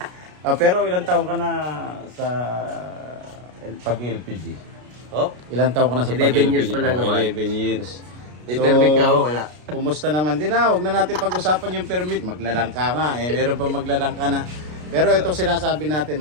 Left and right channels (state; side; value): late; left; 33 ms